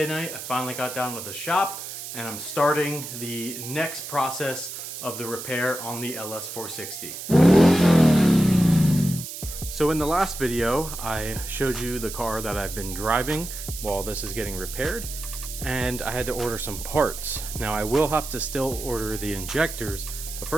night. I finally got down to the shop and I'm starting the next process of the repair on the LS460. So in the last video, I showed you the car that I've been driving while this is getting repaired, and I had to order some parts. Now I will have to still order the injectors, but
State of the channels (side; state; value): right; noise; hiss, 9 dB below the sound